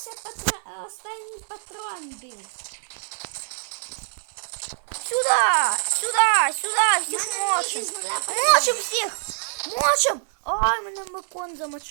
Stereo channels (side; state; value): left; silent; 62 dB below the other